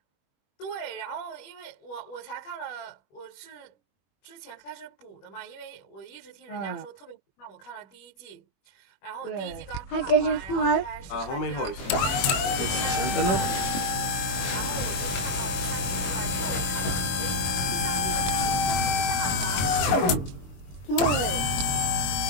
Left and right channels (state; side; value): late; right; 22 ms